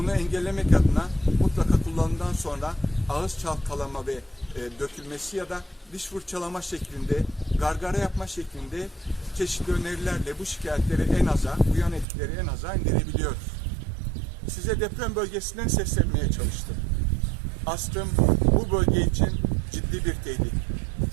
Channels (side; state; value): left; drops out; at 12.1 s